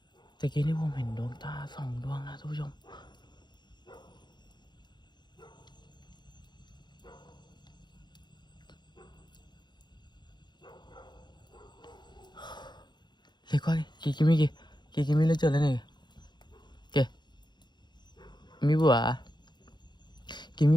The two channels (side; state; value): right; late; 0.21 ms